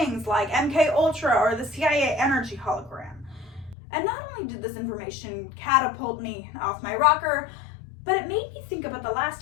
like MK Ultra or the CIA energy hologram. And not only did this information catapult me off my rocker, but it made me think about the last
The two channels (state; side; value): drops out; right; at 3.8 s